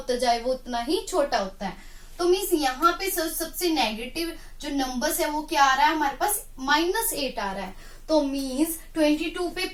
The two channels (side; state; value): both; identical; correlation 1.00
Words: जाए वो उतना ही छोटा होता है. तो मीन्स यहाँ पे सबसे नेगेटिव जो नंबर्स है वो क्या आ रहा है, हमारे पास -8 आ रहा है. तो मीन्स 22 पे